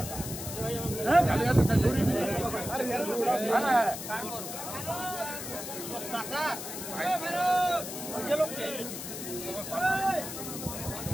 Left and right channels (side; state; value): left; noise; hiss, 8 dB below the sound